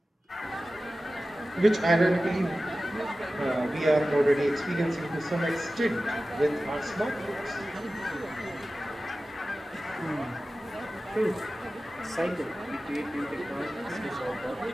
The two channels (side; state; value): both; normal; correlation 0.95